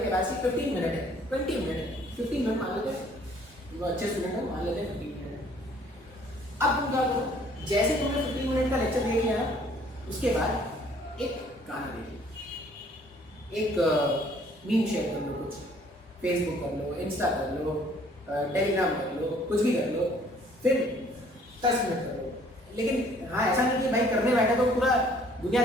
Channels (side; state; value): both; normal; correlation 0.59